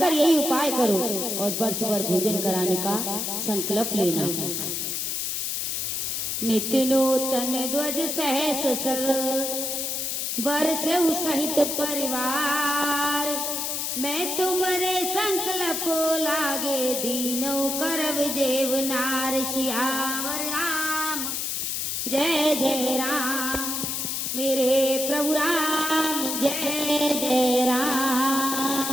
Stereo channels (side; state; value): left; noise; hiss, 1 dB below the sound